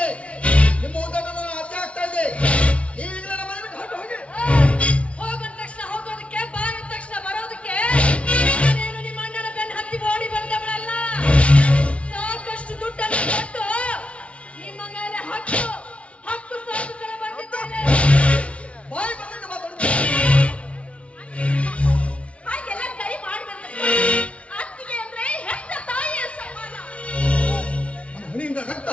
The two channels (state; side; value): late; right; 0.062 ms